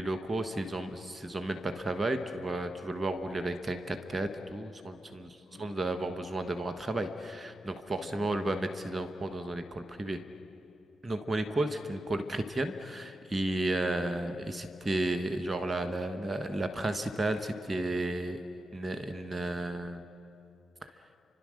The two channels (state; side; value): normal; both; correlation 0.89